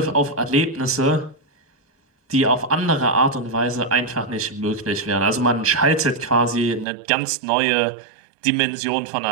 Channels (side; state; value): left; drops out; at 6.9 s